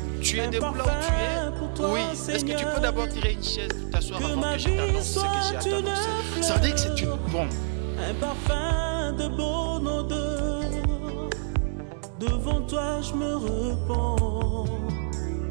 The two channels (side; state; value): left; silent; digital silence